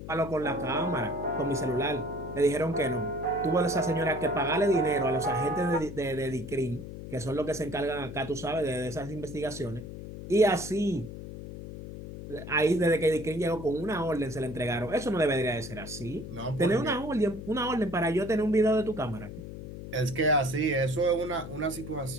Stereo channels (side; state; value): left; noise; hum, 10 dB below the sound